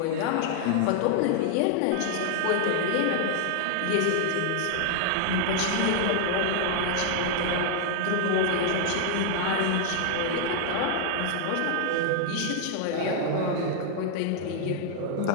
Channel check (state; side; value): different; both; correlation 0.00